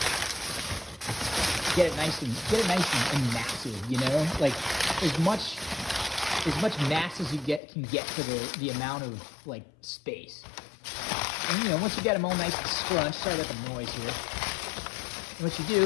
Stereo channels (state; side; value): drops out; right; at 7.6 s